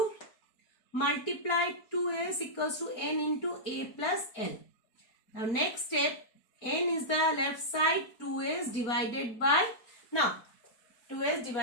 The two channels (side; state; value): right; late; 4.4 ms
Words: Multiply 2s equals to n into a plus l. Now next step, n is the left side, 2s divided by, now 2s